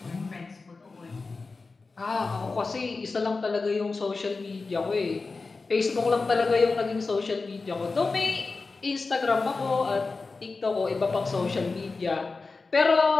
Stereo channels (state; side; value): quieter; right; 4.0 dB